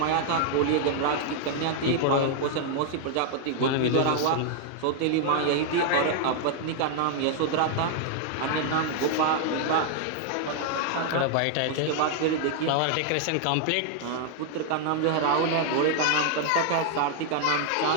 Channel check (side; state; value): both; different; correlation 0.00